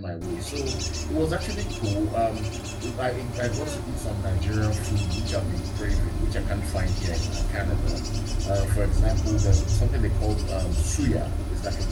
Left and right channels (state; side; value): identical; both; correlation 1.00